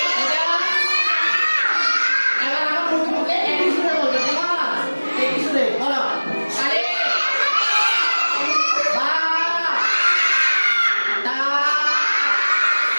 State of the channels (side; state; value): both; inverted; correlation -1.00